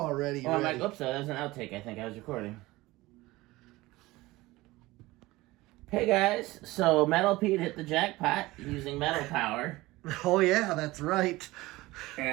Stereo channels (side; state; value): left; quieter; 19.6 dB